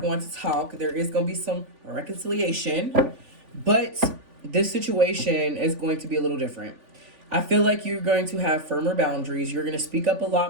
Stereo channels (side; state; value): left; late; 3.5 ms